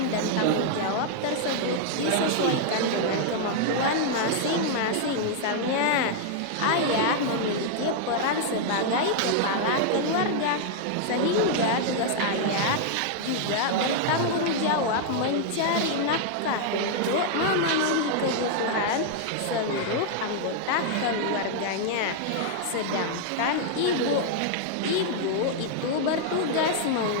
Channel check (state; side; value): different; both; correlation -0.01